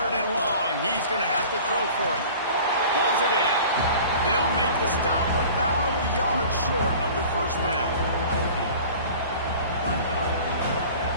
and long, he's going to have to throw for it. Pulls it in. They'll make the stop about a yard short of the first down.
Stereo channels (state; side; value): inverted; both; correlation -0.43